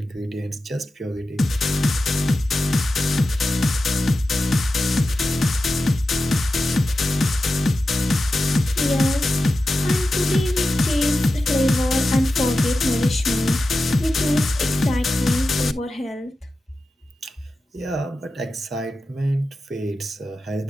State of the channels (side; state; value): both; normal; correlation 0.92